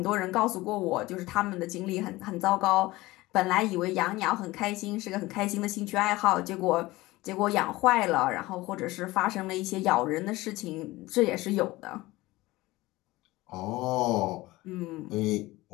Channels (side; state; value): right; quieter; 19.4 dB